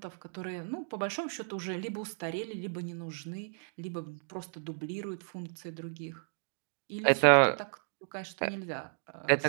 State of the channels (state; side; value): silent; left; digital silence